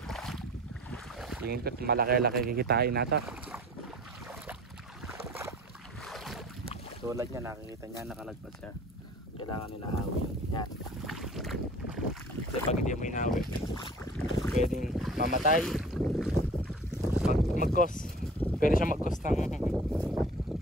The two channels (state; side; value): normal; both; correlation 0.45